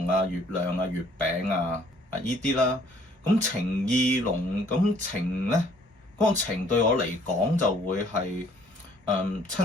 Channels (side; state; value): both; normal; correlation 0.60